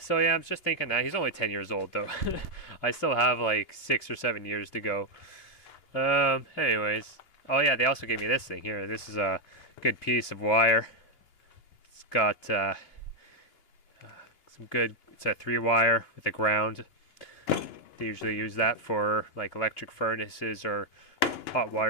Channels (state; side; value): late; right; 2.7 ms